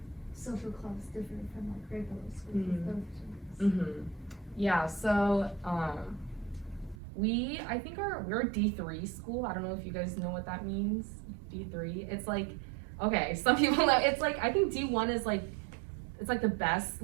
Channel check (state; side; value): drops out; left; at 7.0 s